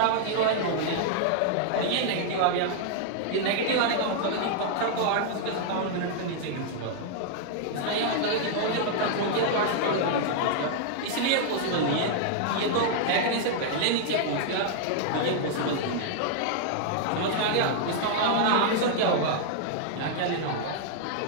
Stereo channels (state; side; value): different; both; correlation -0.01